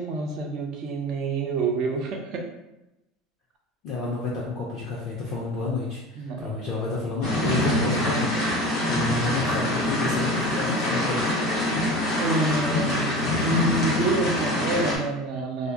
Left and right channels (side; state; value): both; normal; correlation 0.33